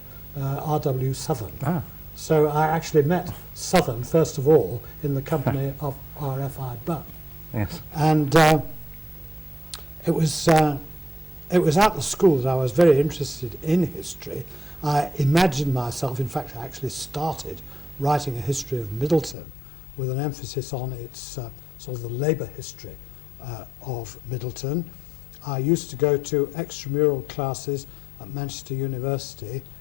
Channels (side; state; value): right; drops out; at 19.4 s